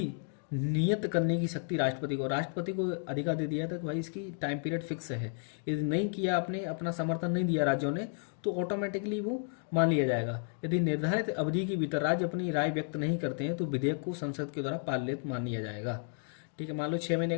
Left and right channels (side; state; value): right; silent; 56 dB below the other